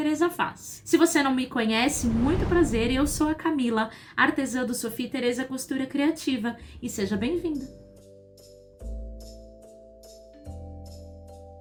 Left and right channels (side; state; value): both; identical; correlation 1.00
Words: Faz. Se você não me conhece, muito prazer, eu sou a Camila, artesã do Sofia Tereza Costura Criativa, e seja bem-vinda!